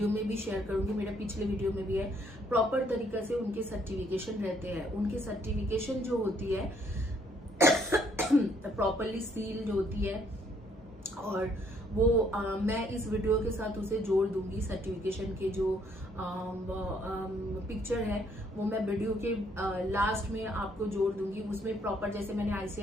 में भी शेयर करूंगी, मेरा पिछले वीडियो में भी है। प्रॉपर तरीके से उनके सर्टिफिकेशन रहते हैं, उनके सर्टिफिकेशन जो होती है प्रॉपरली सील जो होती है, और वो मैं इस वीडियो के साथ उसे जोड़ दूंगी। सर्टिफिकेशन के जो पिक्चर है वो मैं वीडियो के लास्ट में आपको जोड़ दूंगी। उसमें प्रॉपर, जैसे मैंने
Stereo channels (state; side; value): normal; both; correlation 0.67